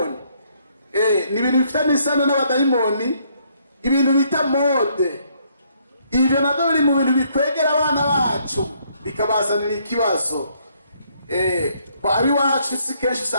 Ni ibintu bifite n'isano n'abadayimoni, ibintu bita mode. Ibyo nabyo biri mu bintu bikwegera abana bacu bikabazanira ikibazo. Abi wacu si kenshi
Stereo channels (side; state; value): both; inverted; correlation -0.69